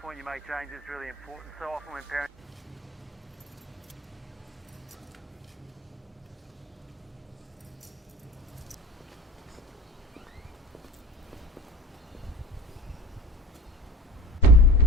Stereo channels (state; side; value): normal; both; correlation 0.34